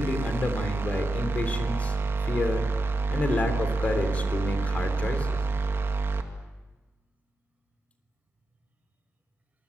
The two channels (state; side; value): normal; both; correlation 0.88